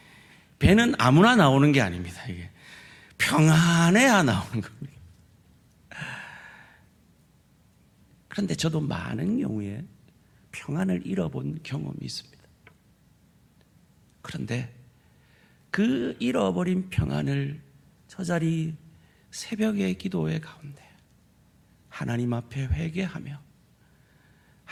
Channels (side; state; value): both; identical; correlation 1.00